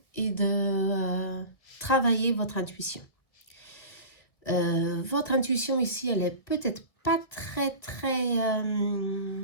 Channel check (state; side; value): late; right; 1.8 ms